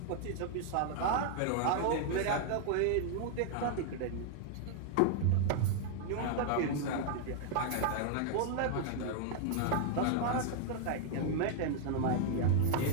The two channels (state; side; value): different; both; correlation 0.00